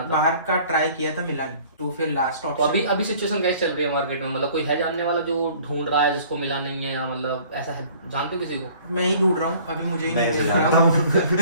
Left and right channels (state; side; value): inverted; both; correlation -0.53